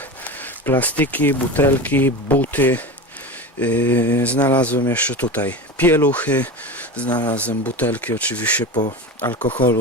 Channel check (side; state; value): both; normal; correlation 0.26